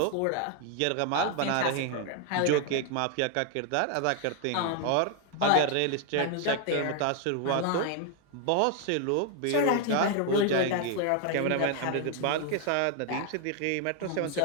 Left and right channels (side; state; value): both; different; correlation 0.00